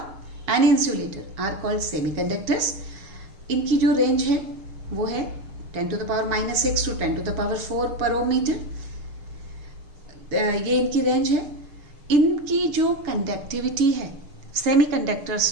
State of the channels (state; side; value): late; left; 6.6 ms